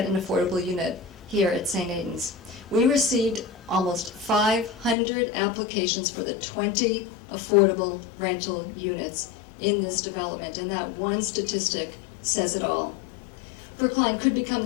an affordable unit here at St. Aidan's. We received almost 500 applications for the 20 affordable rental units in this development, and that one statistic says it all. Brookline could become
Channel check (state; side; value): drops out; right; at 5.0 s